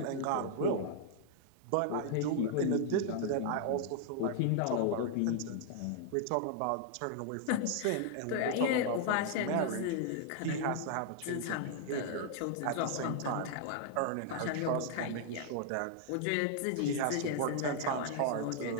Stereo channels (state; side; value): different; both; correlation 0.00